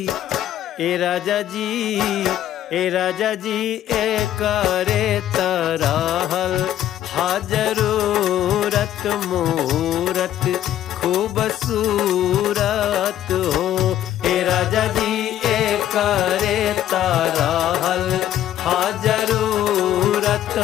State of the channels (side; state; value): right; quieter; 11.9 dB